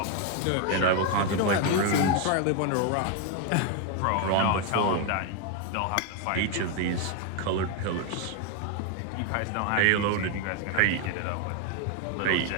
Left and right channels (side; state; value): both; different; correlation 0.01